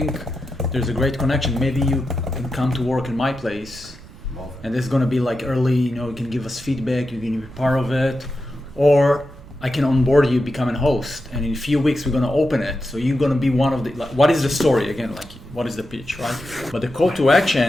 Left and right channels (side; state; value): right; noise; rumble, 18 dB below the sound